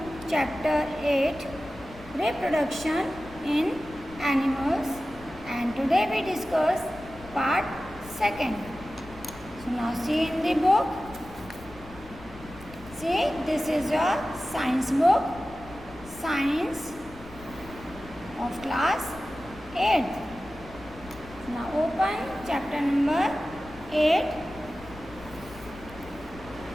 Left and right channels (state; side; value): noise; left; rumble, 18 dB below the sound